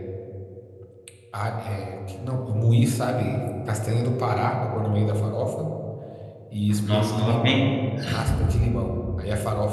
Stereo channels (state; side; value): identical; both; correlation 1.00